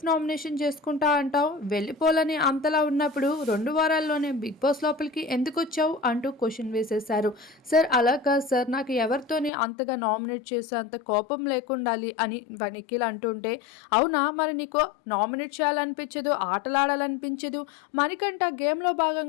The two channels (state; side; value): drops out; right; at 9.5 s